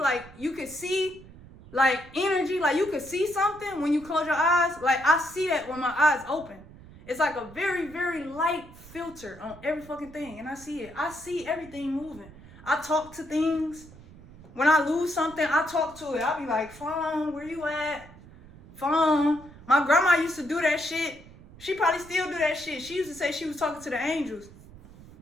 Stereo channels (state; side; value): noise; right; rumble, 20 dB below the sound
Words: you can see like energy, like you could see something when you close your eyes. Like I see that when my eyes open. It's like a very, very light filter on every fucking thing. And I see it. I see everything moving. I talk to things. When I lose something, I talk to it. I'll be like, phone, where you at? Phone. My grandma used to do that shit. She probably still do that shit. She used to say she was talking to the angels.